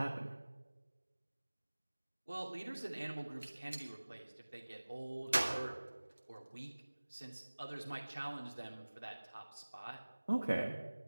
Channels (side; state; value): both; inverted; correlation -1.00